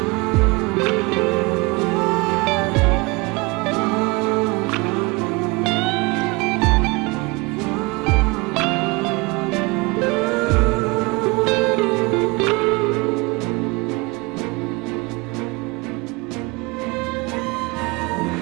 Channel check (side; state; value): left; quieter; 26.2 dB